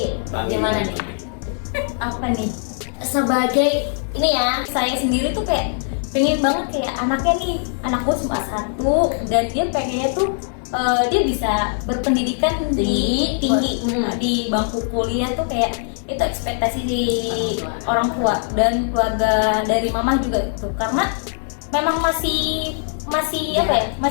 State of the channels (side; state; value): right; silent; 63 dB below the other